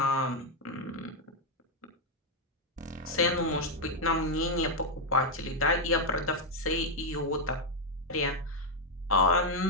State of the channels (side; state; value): both; normal; correlation 0.01